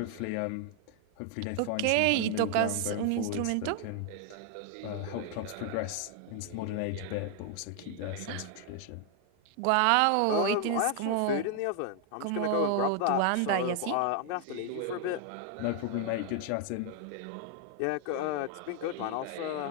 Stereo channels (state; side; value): different; both; correlation 0.00